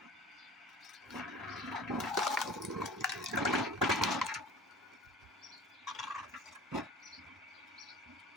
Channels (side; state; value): both; normal; correlation 0.42